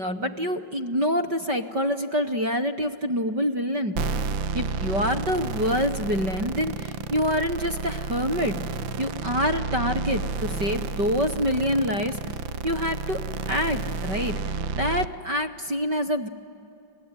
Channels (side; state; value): left; late; 5.2 ms